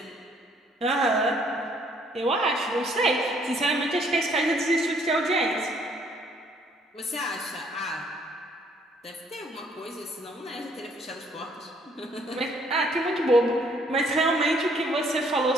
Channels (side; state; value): both; normal; correlation 0.64